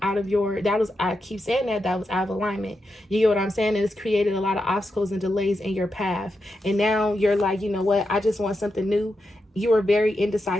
I keep saying that was out of alignment. You get what I'm saying? And it's created a lot of obstacles and delays in your path. And now you're like, you know what? I just want something new. You are very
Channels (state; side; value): normal; both; correlation 0.87